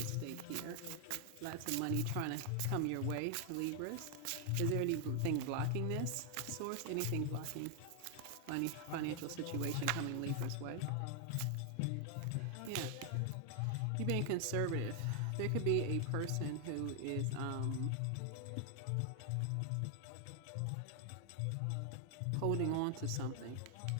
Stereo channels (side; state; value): both; different; correlation 0.00